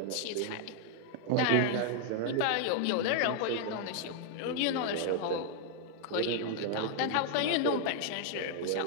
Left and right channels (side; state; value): both; different; correlation 0.00